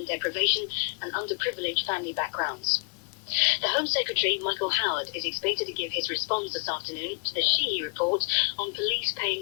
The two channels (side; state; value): right; quieter; 35.2 dB